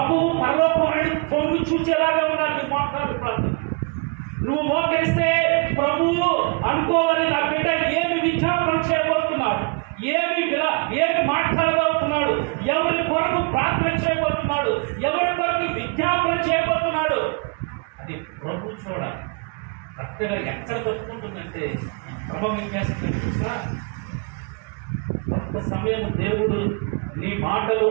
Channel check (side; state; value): left; quieter; 31.0 dB